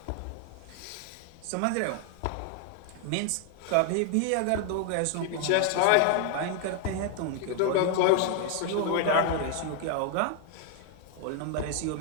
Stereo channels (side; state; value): both; different; correlation 0.00